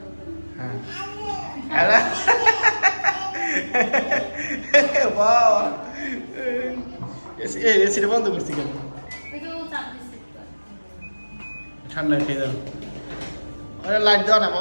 হ্যাঁ হ্যালো বাবা, এসিটা বন্ধ করছি কেন? ঠান্ডা খেয়ে যাও। লাইট দাও না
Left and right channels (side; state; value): both; inverted; correlation -1.00